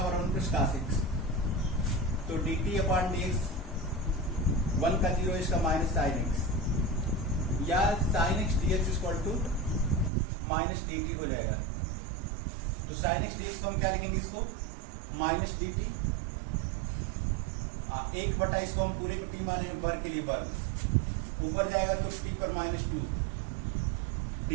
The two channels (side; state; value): left; drops out; at 10.1 s